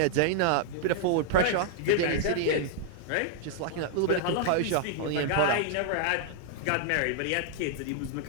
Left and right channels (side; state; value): both; different; correlation -0.01